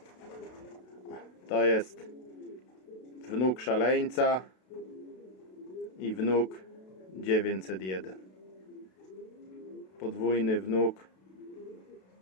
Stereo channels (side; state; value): right; late; 32 ms